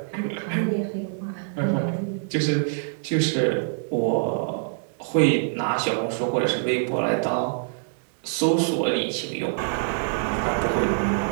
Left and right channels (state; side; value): silent; left; digital silence